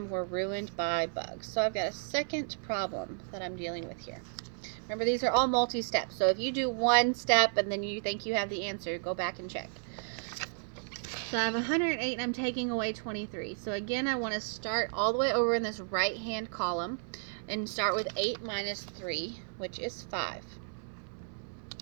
were ruined by bugs. So I've got a second problem that I'm dealing with here. Remember, these are all multi-steps. So if you do one step and then you think you have the answer, go back and check. So I have 108 and I'm taking away 23. So again, I want to start all the way over in this right-hand column and start with 8 minus 3, which is 5.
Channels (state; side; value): silent; left; 56 dB below the other